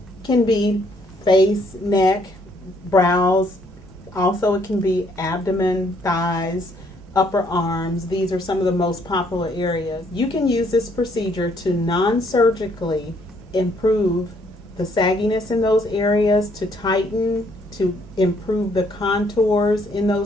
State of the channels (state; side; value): normal; both; correlation 0.67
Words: can be face, neck, brows, also it can be abdomen, thighs, upper arms. These are some of the most popular areas. You can use this procedure to non-surgically improve the sagginess in those areas, to tighten, to improve the contours in